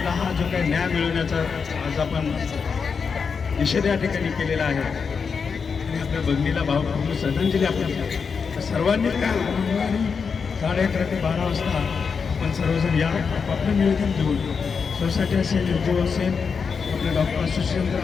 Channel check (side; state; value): right; quieter; 5.7 dB